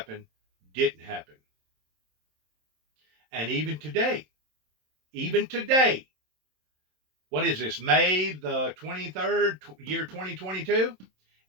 didn't happen. And even today, what is this, May the 23rd, year 2022?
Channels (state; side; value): late; left; 27 ms